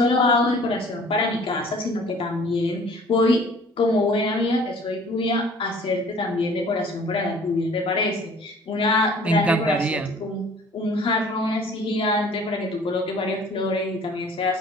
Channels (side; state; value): both; normal; correlation 0.51